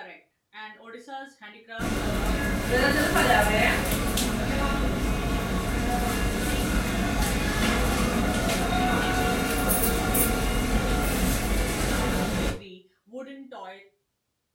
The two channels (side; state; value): both; identical; correlation 1.00